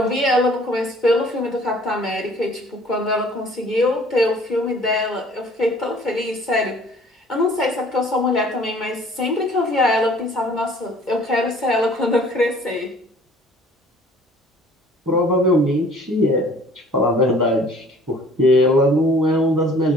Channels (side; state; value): both; normal; correlation 0.53